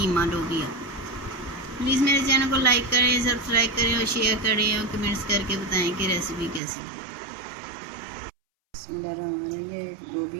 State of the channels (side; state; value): left; drops out; at 6.6 s